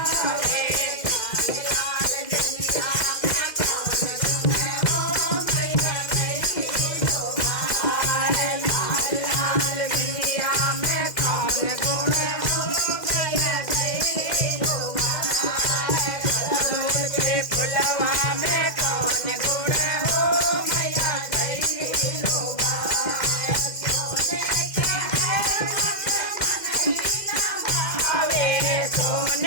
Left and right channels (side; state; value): right; late; 2.0 ms